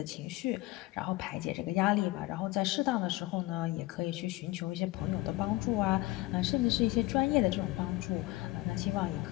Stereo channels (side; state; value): right; quieter; 19.2 dB